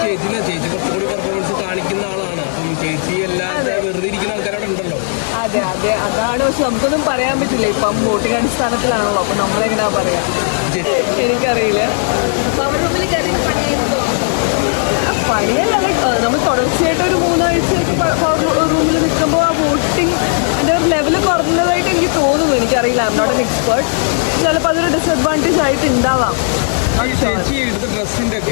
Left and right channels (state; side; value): silent; right; digital silence